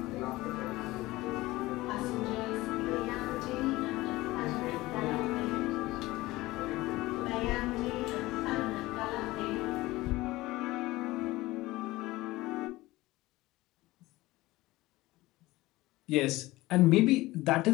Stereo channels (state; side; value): quieter; right; 19.0 dB